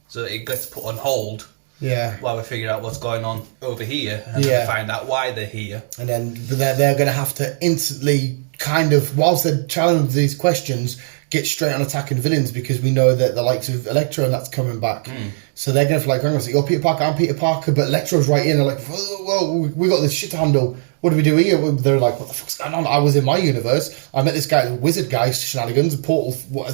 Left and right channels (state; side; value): silent; left; digital silence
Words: it gets put on hold. Yeah. While we figure out what's going on over here, and then we find out why they're here. And then they're going to have to instantly kind of, whilst they're challenging these questions, get straight on attacking villains because we know that the likes of Electro and that's coming back. So they're going to hang on, you're Peter Parker, I'm Peter Parker, but Electro's right in. They're like, well, we got this shit to handle. What do we do here? They're like, what the fuck's going on? I was in my universe. I met this guy, the wizard guy, shenanigans, the portal